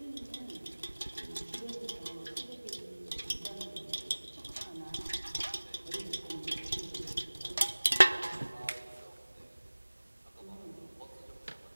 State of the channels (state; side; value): inverted; both; correlation -1.00